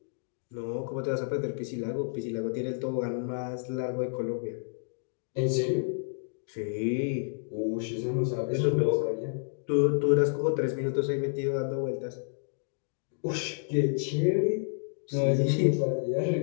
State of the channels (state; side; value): silent; right; digital silence